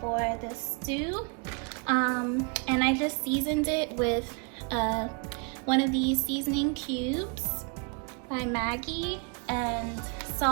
for the stew. And I just seasoned it with one of these seasoning cubes by Maggie, and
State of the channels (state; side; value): quieter; left; 35.9 dB